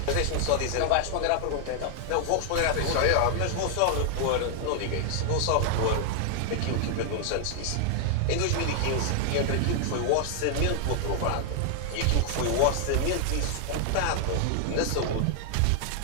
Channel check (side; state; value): both; different; correlation 0.00